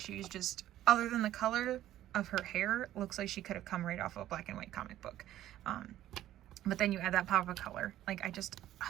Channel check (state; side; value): quieter; left; 13.2 dB